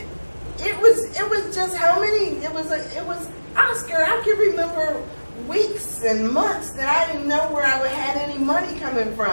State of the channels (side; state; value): both; inverted; correlation -1.00